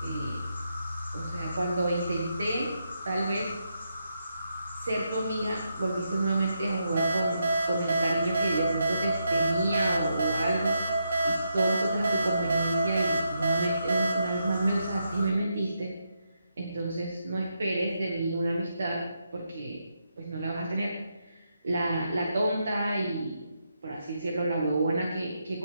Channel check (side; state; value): both; inverted; correlation -0.82